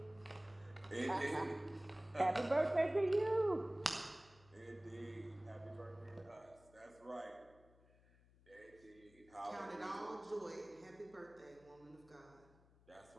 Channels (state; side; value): noise; left; hum, 27 dB below the sound